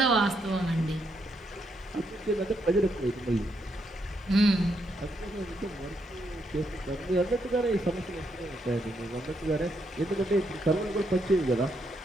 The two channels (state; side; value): normal; both; correlation 0.78